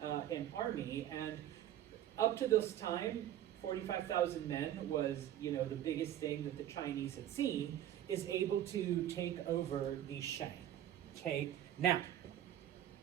an army, and up to this time, 45,000 men was, the biggest thing that the Chinese had seen, is able to take over the Shang. Okay, now,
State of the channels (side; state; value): left; quieter; 11.8 dB